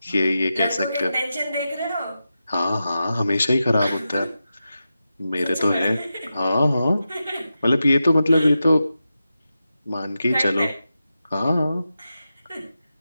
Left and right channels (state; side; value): inverted; both; correlation -0.91